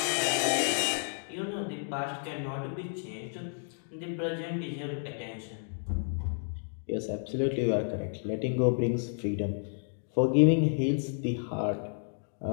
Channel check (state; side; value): silent; right; digital silence